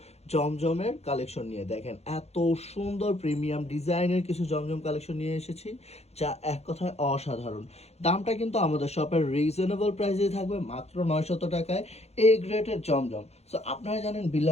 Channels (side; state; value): right; late; 0.31 ms